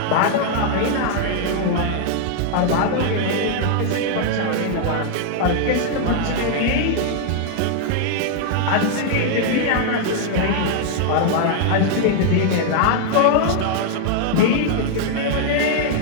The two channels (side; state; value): both; different; correlation 0.00